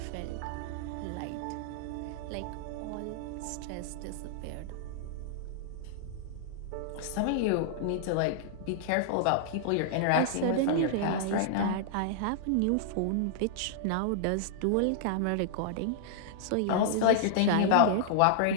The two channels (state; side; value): different; both; correlation -0.01